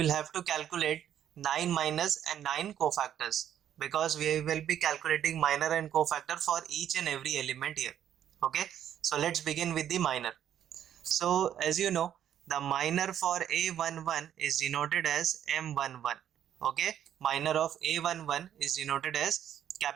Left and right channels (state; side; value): quieter; left; 10.2 dB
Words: have to calculate 9 minus and 9 cofactors, because we will be calculating minor and cofactor for each and every element here. Okay, so let's begin with the minor. So as you know, the minor for A11 is denoted as M11. Okay, minor of A11 is denoted as